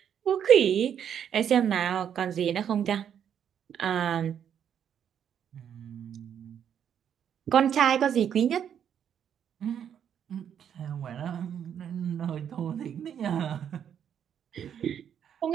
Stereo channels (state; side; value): quieter; left; 8.8 dB